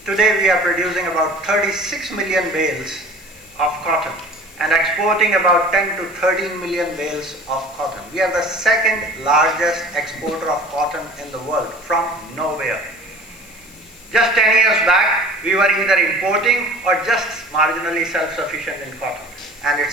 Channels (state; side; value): noise; left; hiss, 23 dB below the sound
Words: Today we are producing about 36 million bales of cotton and exporting about 10 to 13 million bales of cotton. We are the second largest exporter of cotton in the world from nowhere. Just 10 years back, we were either importing or just marginally self-sufficient in cotton. And